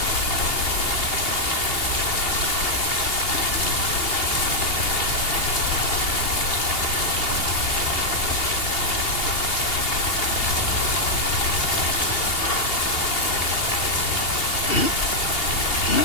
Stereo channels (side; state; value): right; late; 2.8 ms